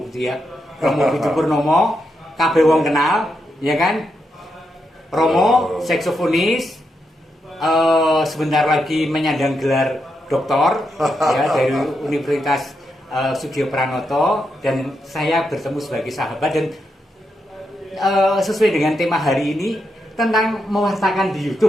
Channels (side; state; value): both; normal; correlation 0.83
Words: Budi ya. Romo Budi Purnomo, kabeh wong kenal, ya kan? Romo, saksofonis, sebentar lagi menyandang gelar doktor ya dari Universitas Sudio Pranoto, dan saya bertemu sebagai sahabat, dan sesuai dengan tema hari ini tentang mewartakan di